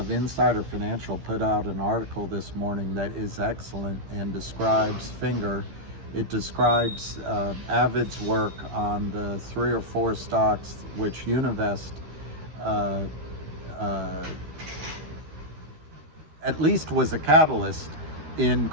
Insider Financial put out an article this morning that is excellent and describes Finger. It describes Avid's work on the 3 or 4 stocks which Univest at least was a catalyst in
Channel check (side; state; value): left; late; 13 ms